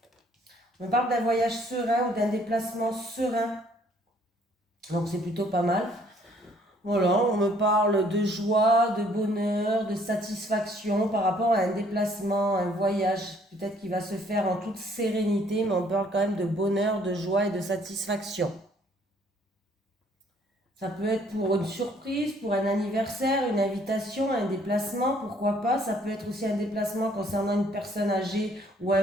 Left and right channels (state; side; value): normal; both; correlation 0.62